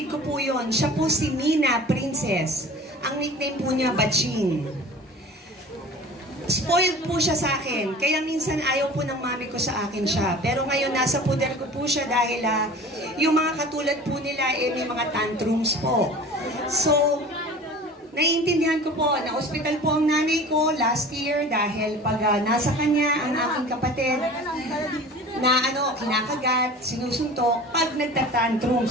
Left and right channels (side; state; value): both; normal; correlation 0.41